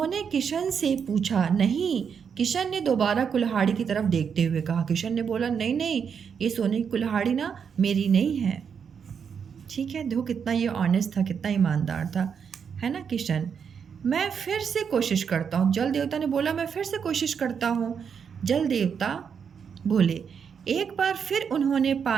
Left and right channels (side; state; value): left; quieter; 6.9 dB